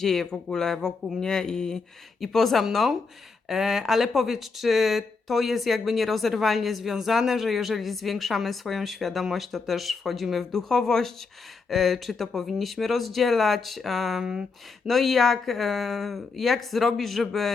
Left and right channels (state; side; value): quieter; right; 4.5 dB